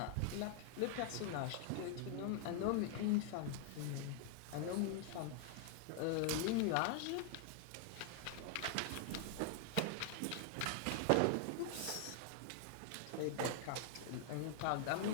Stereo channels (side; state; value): both; different; correlation 0.00